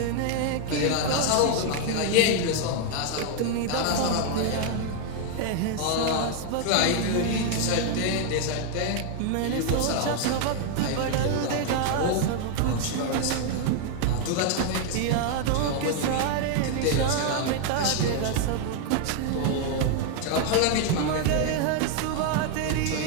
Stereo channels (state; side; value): different; both; correlation 0.00